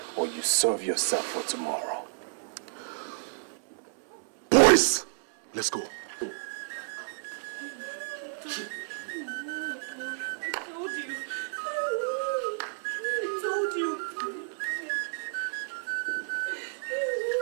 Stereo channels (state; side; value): silent; left; 57 dB below the other